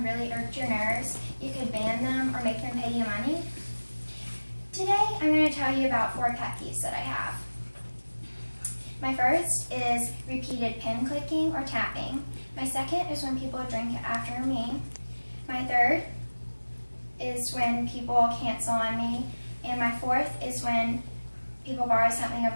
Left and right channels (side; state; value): both; inverted; correlation -1.00